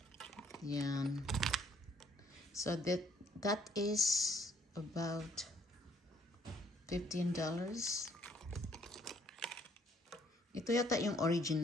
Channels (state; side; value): normal; both; correlation 0.64